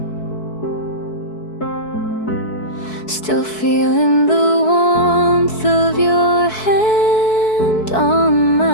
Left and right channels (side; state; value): right; late; 4.6 ms